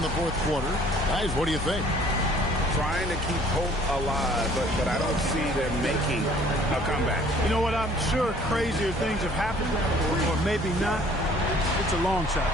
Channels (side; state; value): both; normal; correlation 0.55